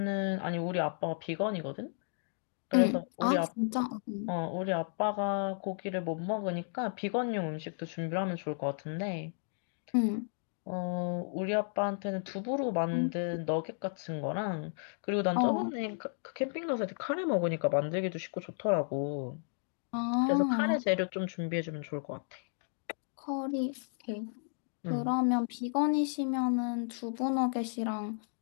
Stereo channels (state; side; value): silent; right; digital silence